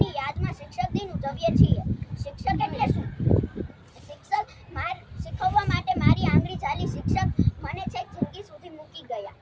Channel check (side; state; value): both; identical; correlation 1.00